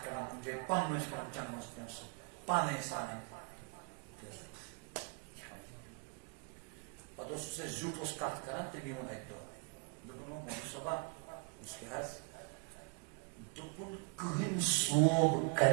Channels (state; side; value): quieter; left; 36.2 dB